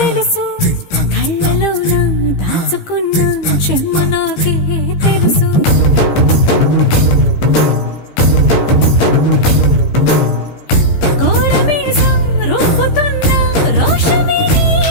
కళ్ళలోన దాచుకున్న చెమ్మ నాకే తెలుసు. కోరమీసం రుబ్బుతున్న రోషమే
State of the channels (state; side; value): late; right; 15 ms